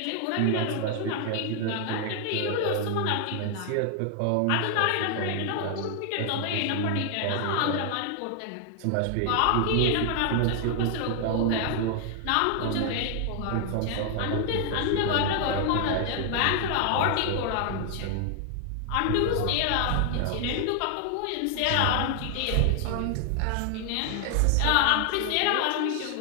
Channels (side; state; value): both; different; correlation 0.00